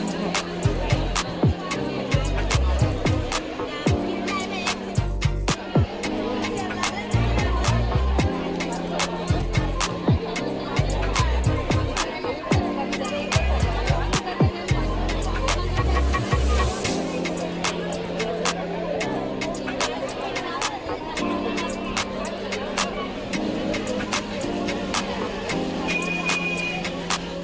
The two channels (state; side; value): identical; both; correlation 1.00